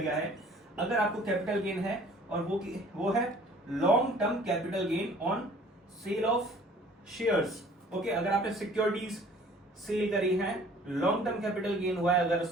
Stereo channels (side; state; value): both; normal; correlation 0.52